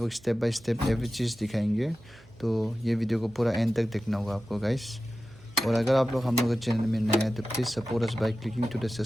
स्टेप बाय स्टेप एवरी चीज़ दिखाएंगे, तो ये वीडियो को पूरा एंड तक देखना होगा आपको गाइस। और अगर आप लोग हम लोग के चैनल में नए हैं तो please support us by clicking to the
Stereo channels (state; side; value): noise; right; hum, 26 dB below the sound